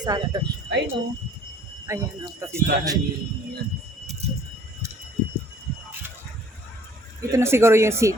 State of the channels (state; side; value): normal; both; correlation 0.55